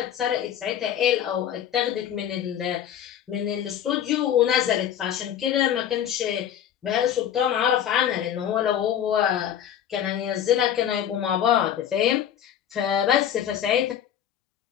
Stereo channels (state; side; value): quieter; right; 10.0 dB